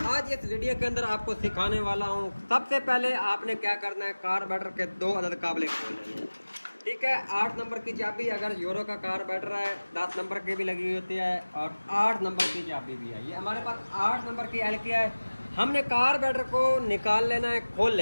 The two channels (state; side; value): inverted; both; correlation -1.00